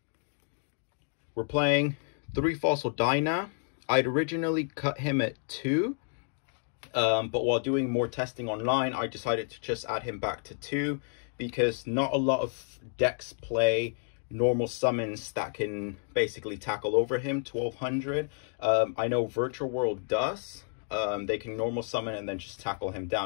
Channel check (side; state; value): right; silent; 58 dB below the other